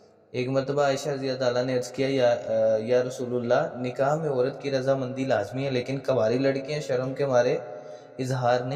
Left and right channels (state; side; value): identical; both; correlation 1.00